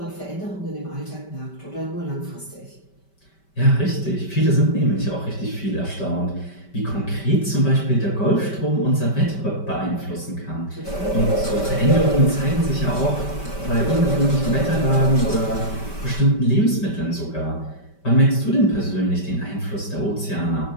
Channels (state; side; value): late; right; 5.2 ms